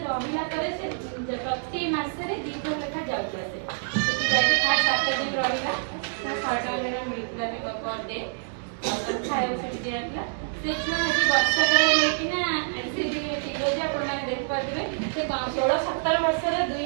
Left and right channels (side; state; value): left; silent; digital silence